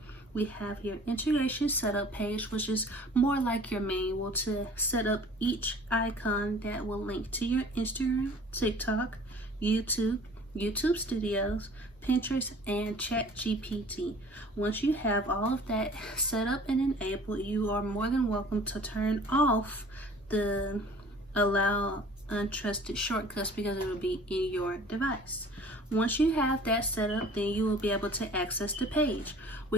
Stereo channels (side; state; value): both; normal; correlation 0.48